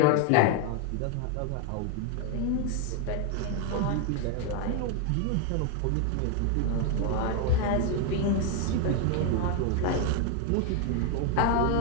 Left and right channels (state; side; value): different; both; correlation 0.01